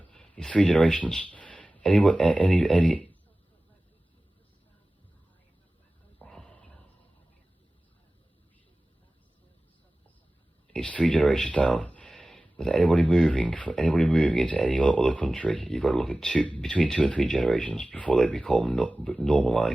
It's 3 generations. Any. It's 3 generations down. With anybody moving into any other country, you've got to look at between 2 and 3 generations before they become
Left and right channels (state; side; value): normal; both; correlation 0.97